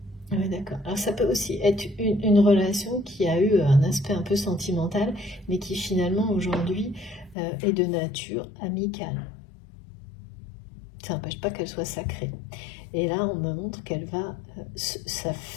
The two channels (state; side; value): drops out; right; at 7.4 s